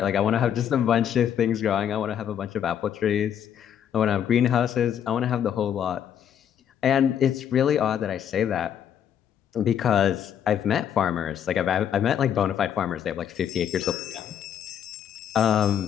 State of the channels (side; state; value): right; quieter; 9.2 dB